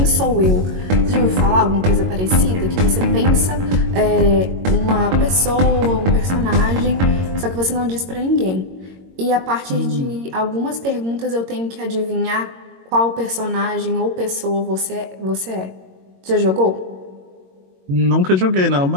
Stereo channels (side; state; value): left; late; 22 ms